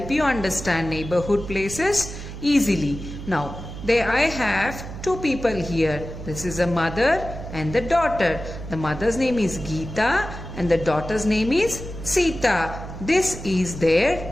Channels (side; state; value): right; noise; hum, 10 dB below the sound